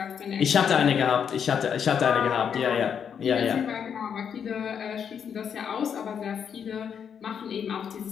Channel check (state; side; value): quieter; right; 7.6 dB